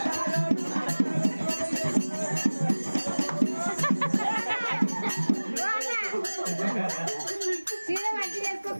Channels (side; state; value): both; inverted; correlation -1.00